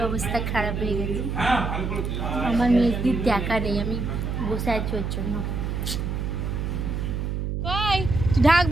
অবস্থা খারাপ হয়ে গেছে। আমার মেয়েদের দেখা নেই, আমি বসে আছি ওর জন্য। ঢাক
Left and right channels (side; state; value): right; noise; hum, 2 dB below the sound